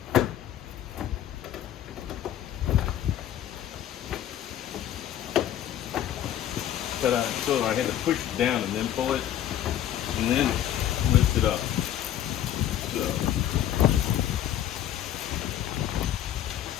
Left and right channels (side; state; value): right; quieter; 11.4 dB